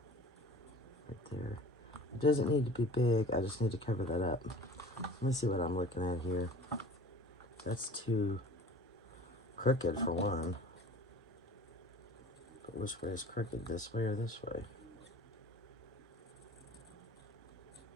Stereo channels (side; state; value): both; normal; correlation 0.43